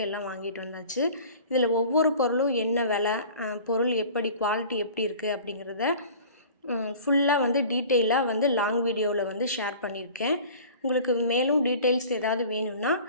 எல்லாம் வாங்கிட்டு வந்தாச்சு. இதில் ஒவ்வொரு பொருளும் என்ன விலை, பொருள் எப்படி, குவாலிட்டி எப்படி இருக்குது அப்படிங்கிறத ஃபுல்லாக டீட்டெயிலாக லாங் வீடியோவில் ஷேர் பண்ணியிருக்கேன். உங்களுக்கு மேலும் டீட்டெயில்ஸ் ஏதாவது வேணும்னா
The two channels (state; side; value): inverted; both; correlation -0.43